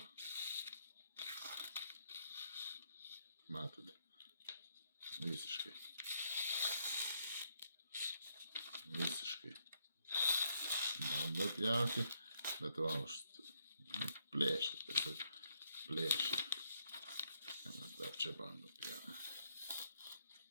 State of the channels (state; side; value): inverted; both; correlation -0.75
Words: Matote, visiškai bando pjauti, bet va, plėšia, tiesiog plėšia. Dar čia bando pjauti.